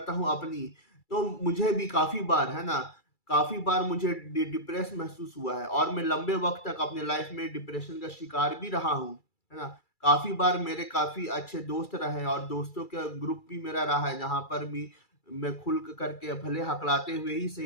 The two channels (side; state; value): right; late; 2.3 ms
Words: हूँ अपनी, तो मुझे भी काफ़ी बार, है ना, काफ़ी बार मुझे डिप्रेस महसूस हुआ है और मैं लंबे वक़्त तक अपने लाइफ में डिप्रेशन का शिकार भी रहा हूँ, है ना? काफ़ी बार मेरे काफ़ी अच्छे दोस्त रहे हैं और दोस्तों का ग्रुप भी मेरा रहा है, जहाँ पर भी मैं खुल करके भले हकलाते हुए ही